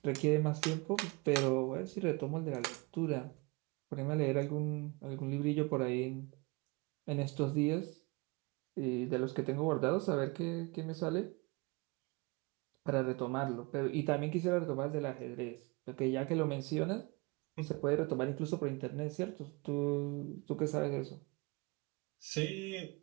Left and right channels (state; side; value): quieter; left; 26.0 dB